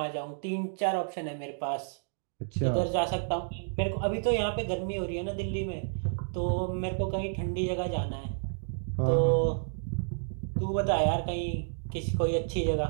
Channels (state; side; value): silent; left; digital silence